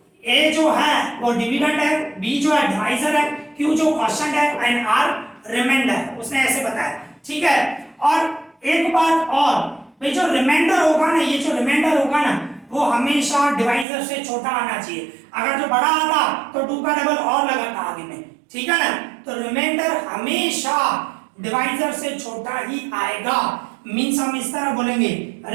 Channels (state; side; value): drops out; left; at 13.9 s